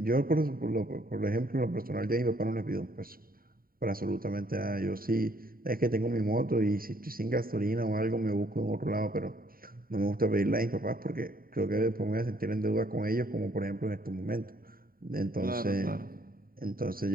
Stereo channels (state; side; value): late; left; 0.42 ms